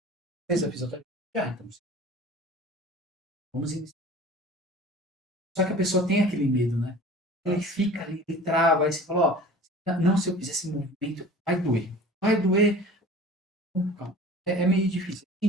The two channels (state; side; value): normal; both; correlation 0.42